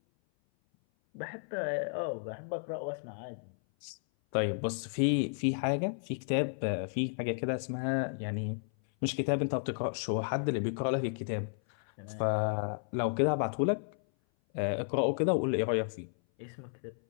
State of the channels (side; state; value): right; silent; 56 dB below the other